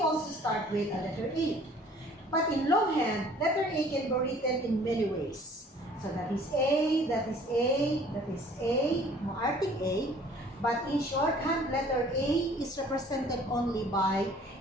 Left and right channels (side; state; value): both; normal; correlation 0.53